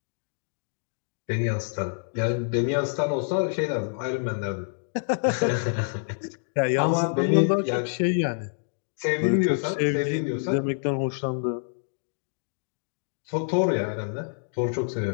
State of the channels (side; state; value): right; silent; digital silence